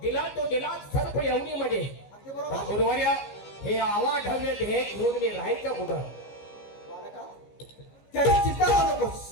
तो दिला सर्प योनीमध्ये. अगदी बरोबर. पण गुरुवर्य, हे आवाढव्य हे घेऊन मी राहायचं कुठं? बालका, त्याची चिंता करू नकोस.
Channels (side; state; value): right; late; 15 ms